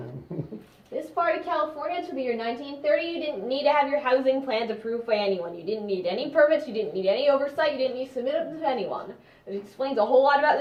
This part of California, to the year 1930, you didn't need to have your housing plans approved by anyone. You didn't need any permits, you didn't need any oversight, you didn't need to submit them to anyone. It explains a whole lot about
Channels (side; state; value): both; identical; correlation 1.00